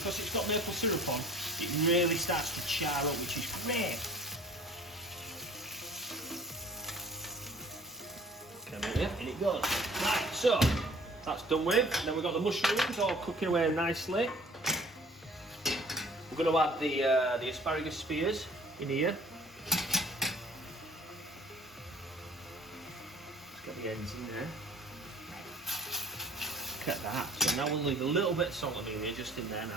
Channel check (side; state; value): both; normal; correlation 0.51